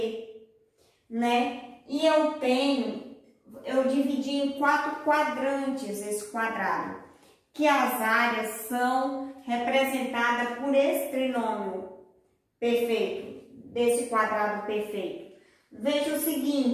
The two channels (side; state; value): both; identical; correlation 1.00